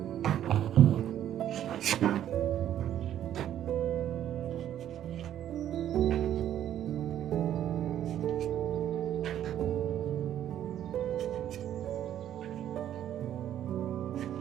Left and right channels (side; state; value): left; quieter; 11.0 dB